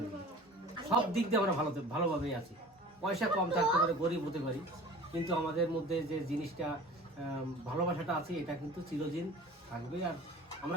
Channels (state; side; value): normal; both; correlation 0.42